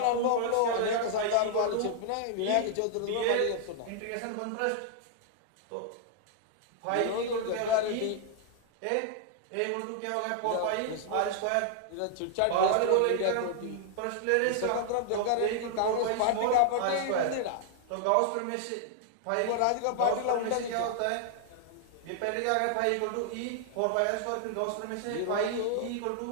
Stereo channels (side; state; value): both; different; correlation -0.01